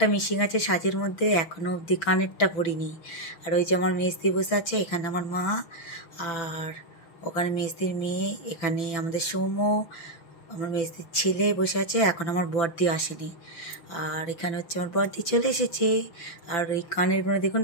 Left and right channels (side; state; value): right; late; 6.0 ms